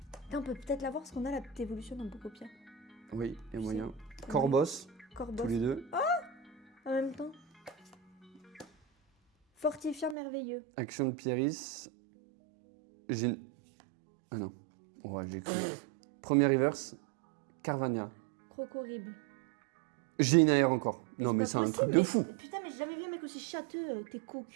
Putain, on peut peut-être l'avoir parce qu'on a la petite évolution dans Pocopia. Oui, il y a Je moyen. sais. Corbos. Corbos. Tous les deux. En même temps. Fortifiant merveilleux. Action de Pieris. J'ai... Ah non. Ouais, j'ai cru. Premier reverse. Carvania. Crocorrible. J'ai une AR encore. Mais Non, mais pas c'est un possible, truc de mais fou. putain, mais j'ai jamais vu un mec aussi châteux, t'es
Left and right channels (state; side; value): drops out; left; at 10.2 s